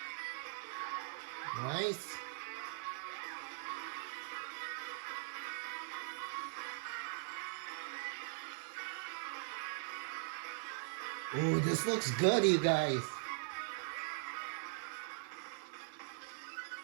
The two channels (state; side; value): silent; left; digital silence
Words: Nice. Ooh, this looks good, you guys.